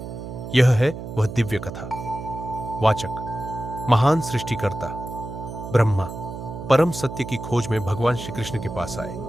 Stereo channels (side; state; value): right; noise; hum, 9 dB below the sound